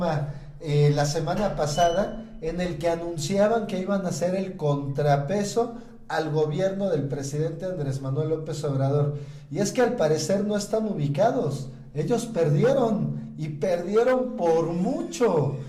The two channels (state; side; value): identical; both; correlation 1.00